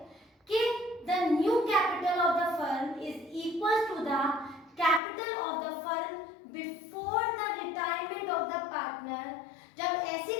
कि the new capital of the firm is equal to the capital of the firm before the retirement of the partner, जब ऐसी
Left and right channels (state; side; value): drops out; right; at 5.0 s